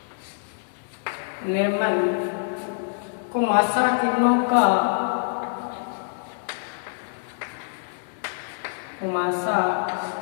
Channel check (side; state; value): right; silent; 61 dB below the other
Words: निर्मल कुमासा किरणों का